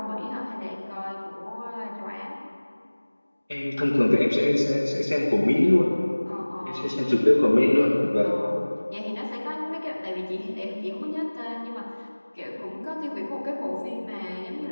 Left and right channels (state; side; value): inverted; both; correlation -1.00